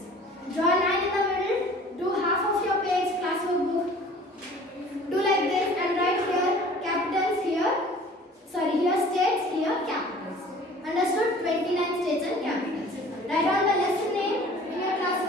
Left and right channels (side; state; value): both; normal; correlation 0.48